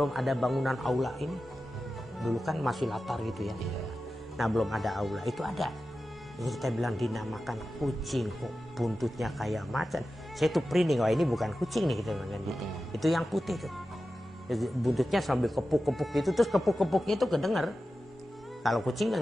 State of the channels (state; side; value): normal; both; correlation 0.93